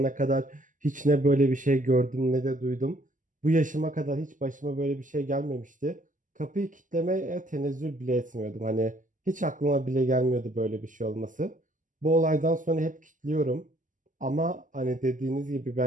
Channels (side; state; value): left; late; 0.38 ms